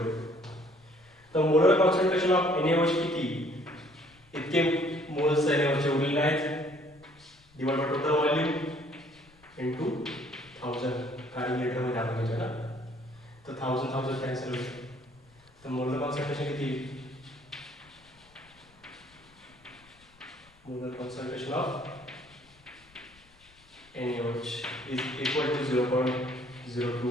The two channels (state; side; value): noise; left; rumble, 29 dB below the sound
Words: to. तर मोलर कॉन्सन्ट्रेशन ऑफ NaOH किती इतके मोल्स NaOH चे उरलेले आहेत divide by total volume into 1000 कारण लिटर मध्ये आपण घ्यायचं ना. तर 1000 कॅन्सल होईल. तर मोलर कॉन्सन्ट्रेशन किती molar concentration of NaOH is equal to